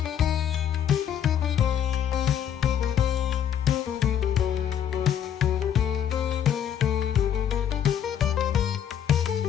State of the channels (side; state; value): right; quieter; 9.3 dB